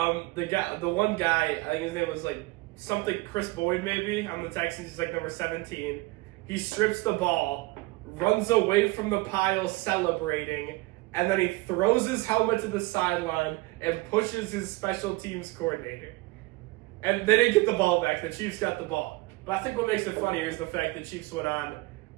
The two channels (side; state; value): left; quieter; 22.6 dB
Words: one guy, I think his name was like something Chris Boyd maybe on the Texans. He's like number 17. He strips the ball, runs away from the pile celebrating, and then he throws his helmet to the sideline and pushes his special teams coordinator. And they didn't get the ball back. The Chiefs got the ball. But I think what makes it funnier is the fact that Chiefs went on